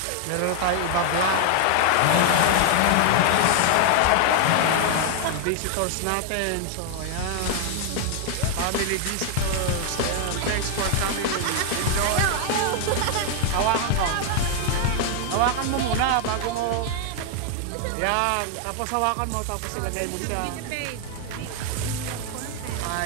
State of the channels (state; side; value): different; both; correlation 0.00